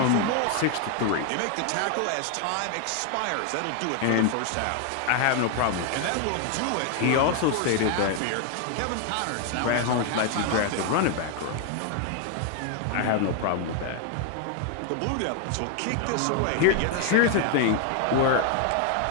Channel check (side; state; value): both; different; correlation 0.00